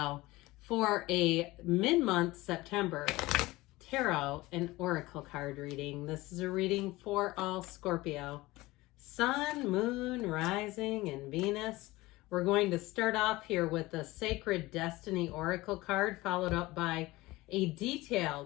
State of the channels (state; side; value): quieter; right; 19.8 dB